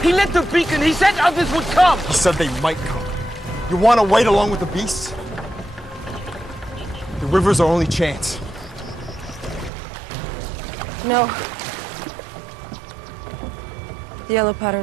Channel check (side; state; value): left; drops out; at 9.7 s